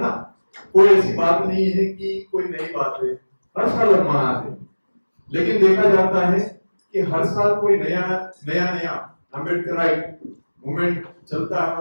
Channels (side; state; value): both; inverted; correlation -1.00